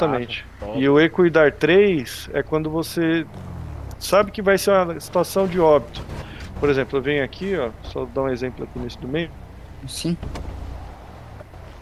E o Equidar 3 é quando você sabe que vai ser uma situação de óbito. Por exemplo, eu venho aqui, ó, só dar um exemplo aqui nesse do meio. Sim.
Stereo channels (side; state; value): both; identical; correlation 1.00